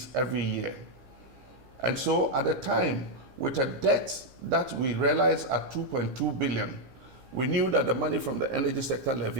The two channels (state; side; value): late; left; 15 ms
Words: every year. And so at the time, with a debt that we realized at 2.2 billion, we knew that the money from the energy sector